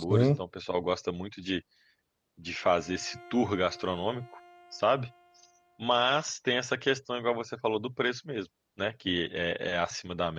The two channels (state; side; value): identical; both; correlation 1.00